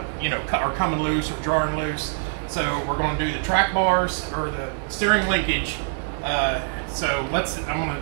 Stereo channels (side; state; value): left; silent; digital silence